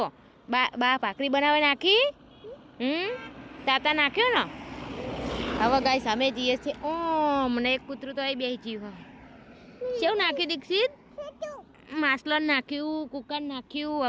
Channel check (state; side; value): identical; both; correlation 1.00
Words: બા ભાખરી બનાવે નાખી તાતા નાખ્યો ને હવે ગાઈસ અમે જઈએ છીએ મને એક કૂતરું તો અહીં બેસી જીવ કેવું નાખ્યું દીક્ષિત માસલન નાખ્યું કુકર નાખ્યું